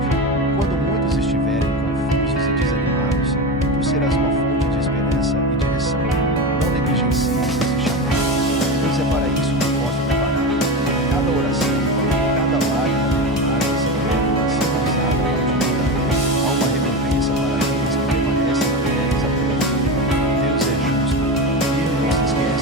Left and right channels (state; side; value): normal; both; correlation 0.21